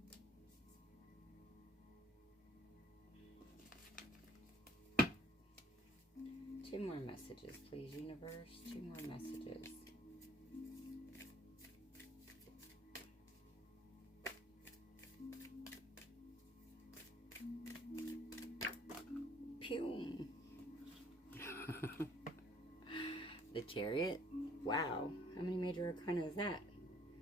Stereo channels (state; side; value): normal; both; correlation 0.60